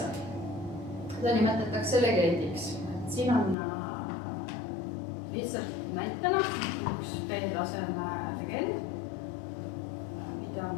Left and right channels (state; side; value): drops out; right; at 3.6 s